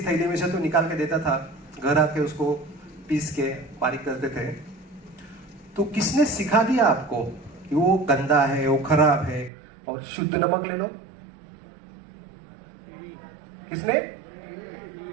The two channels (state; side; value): drops out; left; at 9.5 s